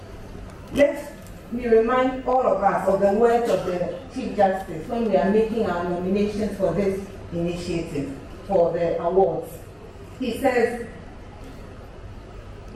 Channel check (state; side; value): identical; both; correlation 1.00